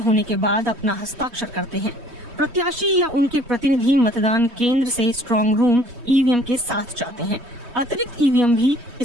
होने के बाद अपना हस्ताक्षर करते हैं। प्रत्याशी या उनके प्रतिनिधि मतदान केंद्र से स्ट्रांग रूम ईवीएम के साथ जाते हैं। अतिरिक्त ईवीएम भी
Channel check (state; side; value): late; left; 3.2 ms